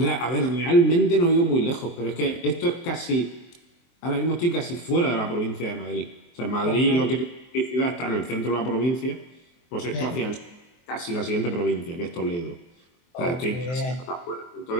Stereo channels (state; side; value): late; right; 23 ms